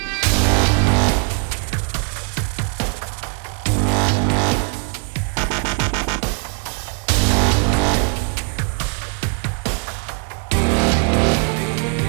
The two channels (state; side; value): quieter; left; 37.9 dB